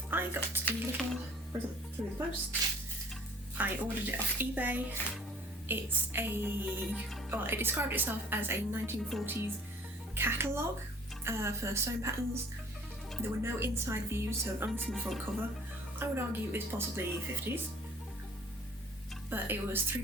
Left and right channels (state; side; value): normal; both; correlation 0.52